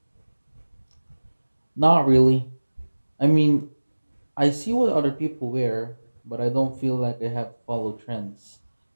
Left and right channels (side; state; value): both; inverted; correlation -1.00